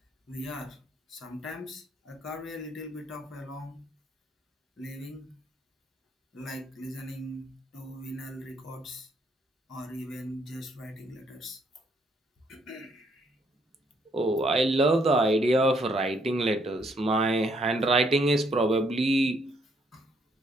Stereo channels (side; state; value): both; normal; correlation 0.70